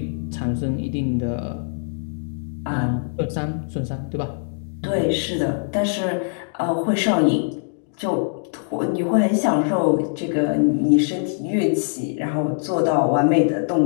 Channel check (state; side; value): silent; right; digital silence